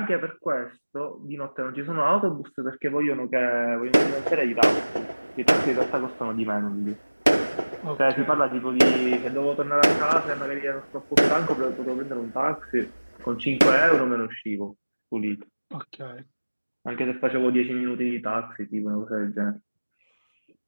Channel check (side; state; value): both; inverted; correlation -1.00